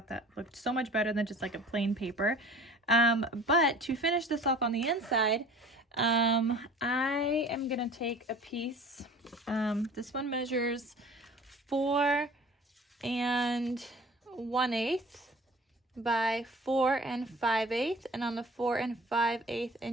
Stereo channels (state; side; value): normal; both; correlation 0.45